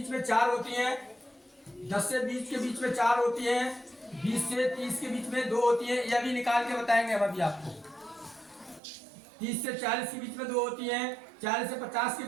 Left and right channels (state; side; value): drops out; left; at 8.8 s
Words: में 4 होती हैं, 10 से 20 के बीच में 4 होती हैं, 20 से 30 के बीच में 2 होती हैं। यह भी निकाल के बताएंगे हम अभी आपको। 30 से 40 के बीच में 2 होती हैं, 40 से 50 के